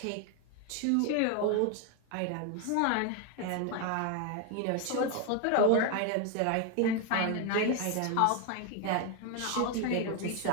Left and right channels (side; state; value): both; different; correlation 0.01